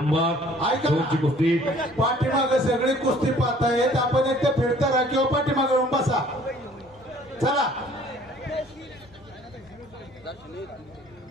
2 ची कुस्ती. पाठीमागे सगळी कुस्ती पाहतायत. आपण एक तर फिरता राहा किंवा पाठीमागे येऊन बसा. चला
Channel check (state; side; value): normal; both; correlation 0.55